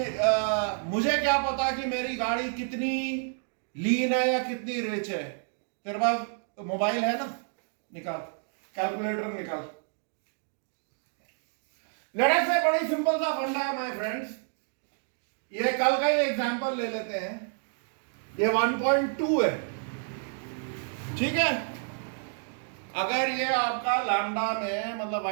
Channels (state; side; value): silent; left; 58 dB below the other